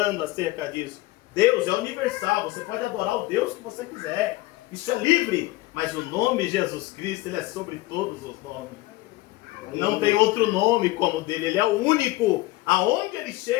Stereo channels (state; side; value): quieter; right; 19.0 dB